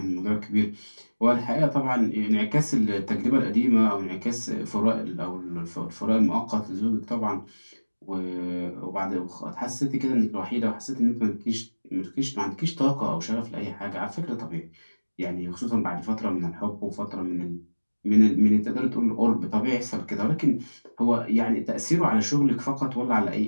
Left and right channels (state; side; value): inverted; both; correlation -1.00